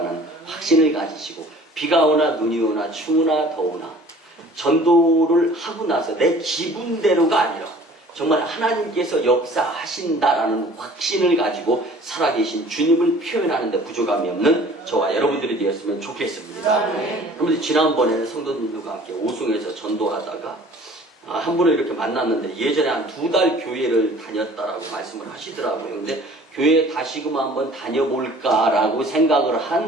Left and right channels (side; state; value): both; normal; correlation 0.50